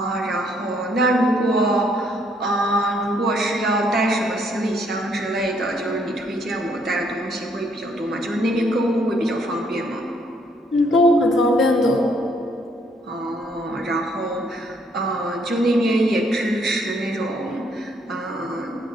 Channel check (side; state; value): both; normal; correlation 0.68